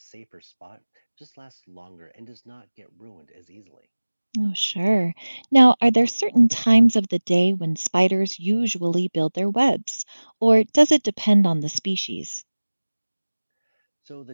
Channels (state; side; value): inverted; both; correlation -1.00